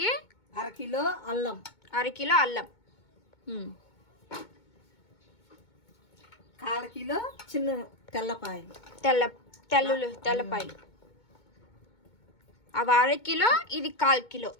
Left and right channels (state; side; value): late; right; 2.2 ms